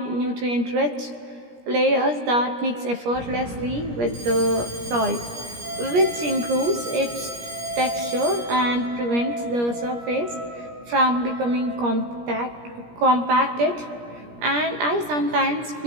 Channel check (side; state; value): left; late; 17 ms